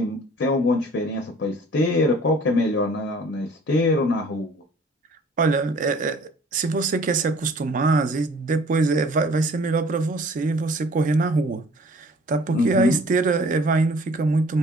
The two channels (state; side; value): normal; both; correlation 0.52